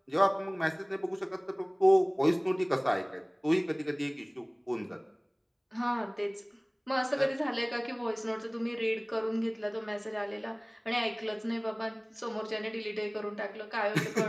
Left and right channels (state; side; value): identical; both; correlation 1.00